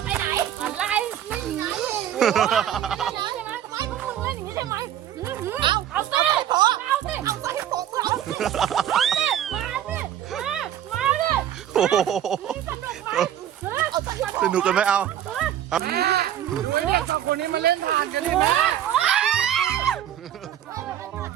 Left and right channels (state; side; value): quieter; left; 10.8 dB